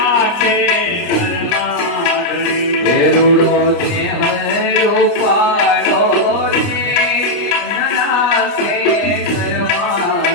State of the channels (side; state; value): right; late; 29 ms